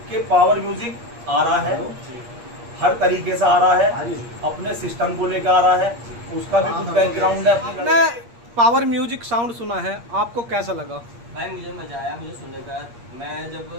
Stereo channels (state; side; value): late; left; 8.5 ms